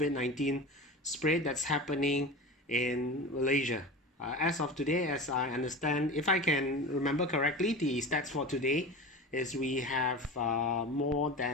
spread that's happening in Malaysia. As of today, as I understand, if I can remember correctly, the stats for today is we have more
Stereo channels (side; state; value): both; normal; correlation 0.30